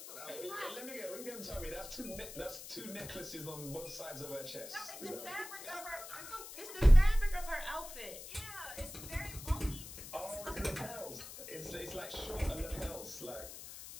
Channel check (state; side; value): noise; left; hiss, 12 dB below the sound